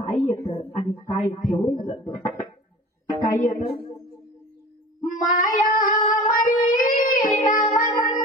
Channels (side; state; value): both; normal; correlation 0.39